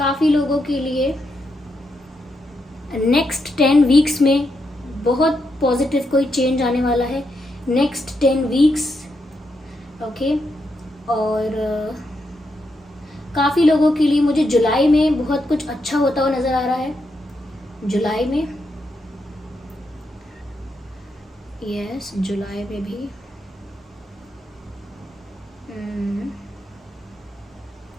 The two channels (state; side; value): normal; both; correlation 0.82